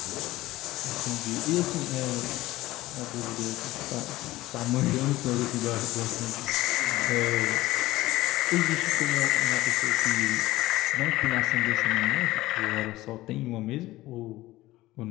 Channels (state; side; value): quieter; right; 17.5 dB